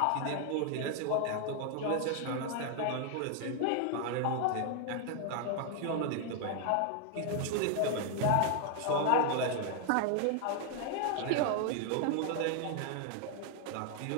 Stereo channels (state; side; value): different; both; correlation 0.00